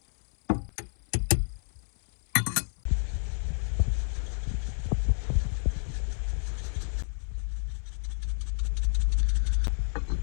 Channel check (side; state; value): right; silent; 58 dB below the other